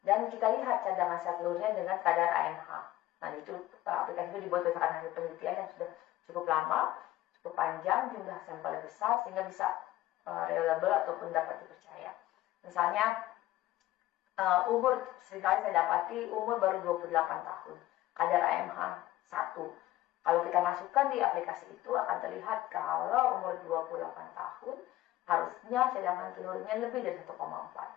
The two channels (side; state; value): right; quieter; 15.5 dB